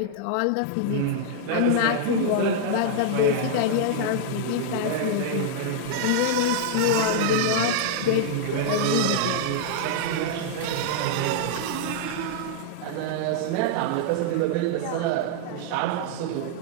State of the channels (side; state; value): both; different; correlation -0.01